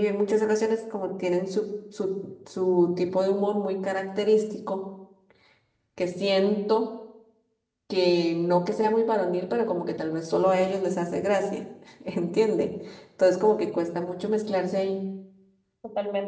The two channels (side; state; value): both; identical; correlation 1.00